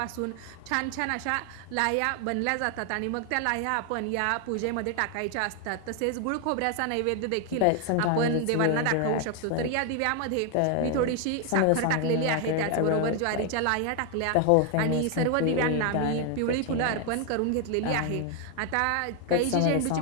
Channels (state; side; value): different; both; correlation 0.00